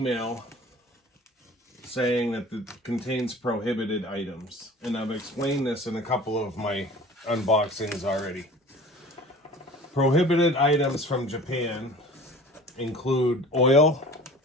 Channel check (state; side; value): normal; both; correlation 0.43